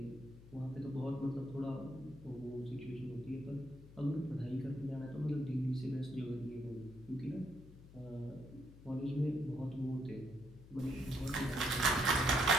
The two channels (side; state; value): left; noise; hum, 18 dB below the sound